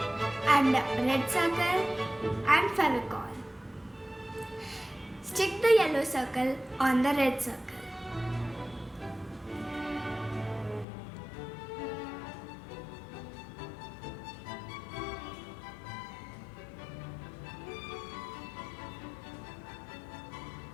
and a red circle and Fevicol. Stick the yellow circle on the red circle.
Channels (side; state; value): right; drops out; at 10.9 s